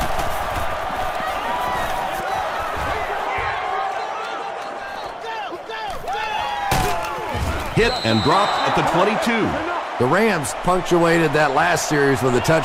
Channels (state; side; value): identical; both; correlation 1.00